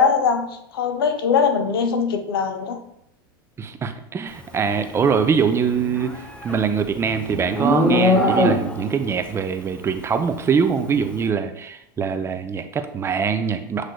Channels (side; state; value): both; normal; correlation 0.35